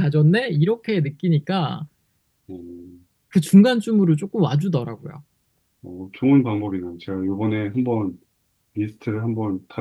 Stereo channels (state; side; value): identical; both; correlation 1.00